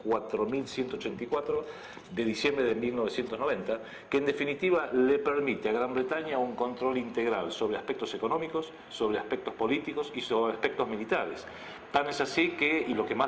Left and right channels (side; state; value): both; identical; correlation 1.00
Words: de diciembre de 1990, que en definitiva le permite a Gran Bretaña un control integral sobre aspectos económicos, sobre aspectos políticos y sobre aspectos militares. Tan es así que, y lo que más